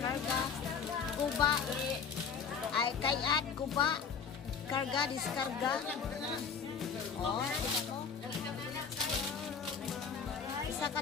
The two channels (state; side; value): quieter; right; 6.2 dB